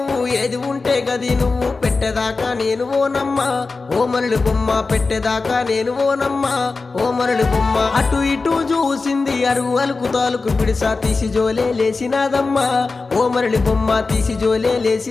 ఏది ఉంటే గది నువ్వు పెట్టేదాకా నేను ఓనమ్మా ఓ మరళి బొమ్మ పెట్టేదాకా నేను ఓనమ్మా ఓ మరళి బొమ్మ. అటు ఇటు చూసింది అరుగు అలుకు తాలుకు పిడిసా తీసి జోలే లేసినాదమ్మా ఓ మరళి బొమ్మ తీసి జోలే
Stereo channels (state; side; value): quieter; right; 4.0 dB